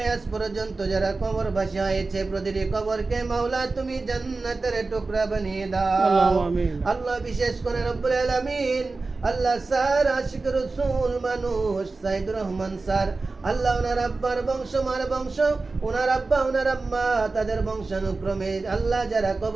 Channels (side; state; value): left; quieter; 3.7 dB